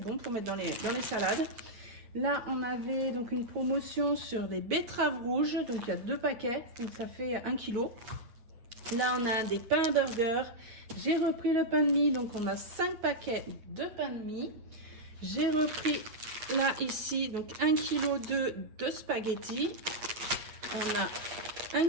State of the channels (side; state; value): left; late; 8.6 ms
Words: pour mettre dans les salades. Là on avait donc une promotion sur des betteraves rouges, donc il y a 2 paquets, donc ça fait 1 kilo. Là on a des pains à burger, j'ai repris le pain de mie, donc on a 5 paquets de pain de mie. J'ai repris là ici donc 1 kg de spaghettis. On a 1